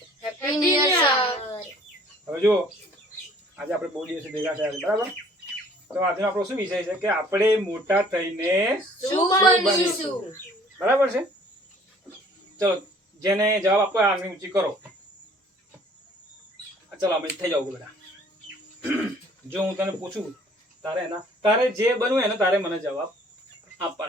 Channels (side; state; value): both; normal; correlation 0.55